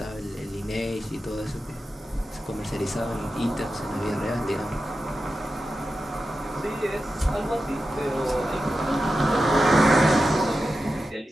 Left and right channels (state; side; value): normal; both; correlation 0.91